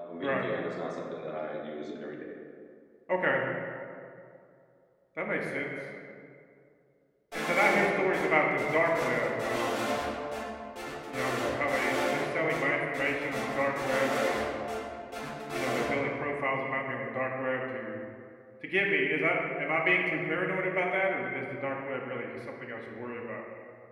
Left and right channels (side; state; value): both; identical; correlation 1.00